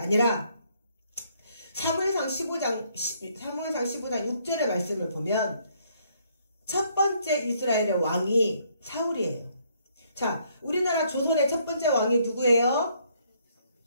사무엘상 15장 6절의 말씀을 보면 첫 번째 이스라엘의 왕이 사울이에요. 자, 우리나라 조선의 첫 번째 왕이 누구예요?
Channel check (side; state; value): both; inverted; correlation -0.68